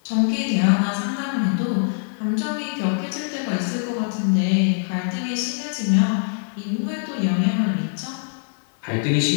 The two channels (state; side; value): silent; right; 63 dB below the other